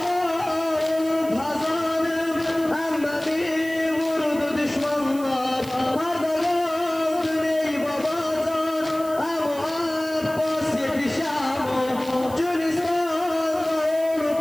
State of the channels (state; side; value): noise; right; hiss, 18 dB below the sound